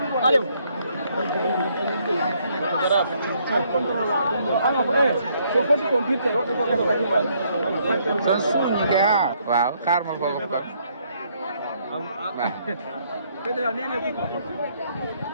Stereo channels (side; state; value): both; inverted; correlation -0.69